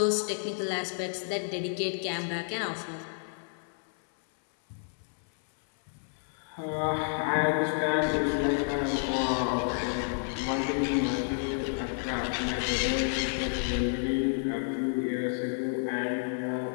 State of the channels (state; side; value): silent; right; 58 dB below the other